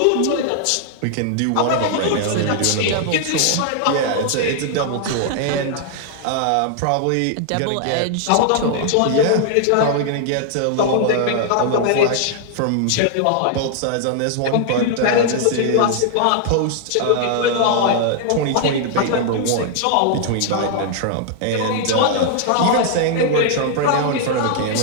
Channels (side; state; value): both; different; correlation 0.00